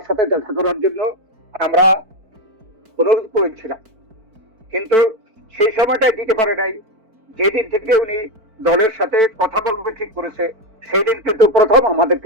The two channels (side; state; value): left; late; 4.5 ms